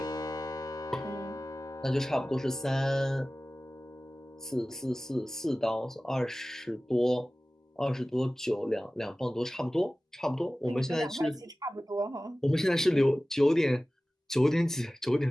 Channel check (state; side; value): normal; both; correlation 0.97